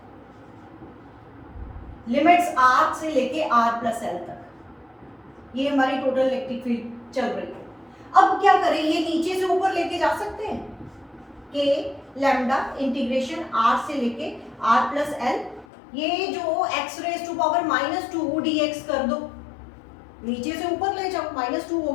limits R से लेके R प्लस L तक, ये हमारी टोटल इलेक्ट्रिक फील्ड चल रही है। अब क्या करें, ये नीचे से ऊपर लेके जा सकते हैं, K लैम्डा इंटीग्रेशन R से लेके R प्लस L, ये जो x raise to power -2 dx कर दो, नीचे से ऊपर ले जाओ, -2 हो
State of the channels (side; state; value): right; drops out; at 15.7 s